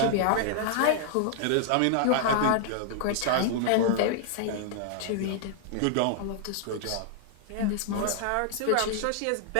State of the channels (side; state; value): both; different; correlation -0.01